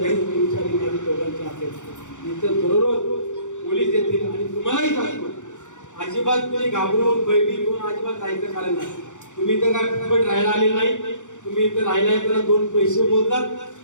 तुमच्या विरोधी दोघांची असेल. इथं दररोज पोलीस येतील आणि तुम्हालाही सांगतो, अजिबात तुम्ही घाबरून भयभीत होऊन अजिबात जायचं कारण नाही. तुम्ही इथं काय फुकट राहायला आले नाही. तुम्ही इथं राहिला आहे तर 2 पैसे बोलतात.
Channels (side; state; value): right; late; 0.85 ms